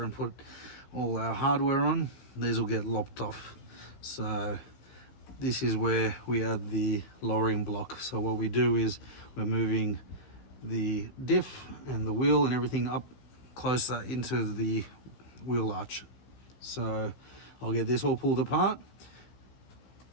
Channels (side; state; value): right; late; 15 ms